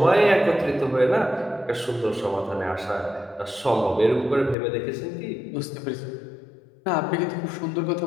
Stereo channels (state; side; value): drops out; right; at 4.5 s